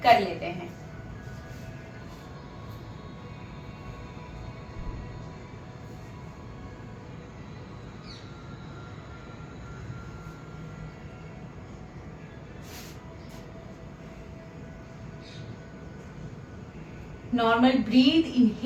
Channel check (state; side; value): identical; both; correlation 1.00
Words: कर लेते हैं। Normal breath,